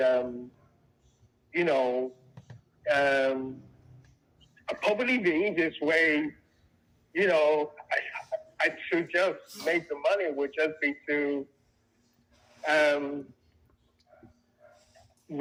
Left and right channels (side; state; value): both; identical; correlation 1.00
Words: you know, um, probably the easiest way, to just make the money would just be to um,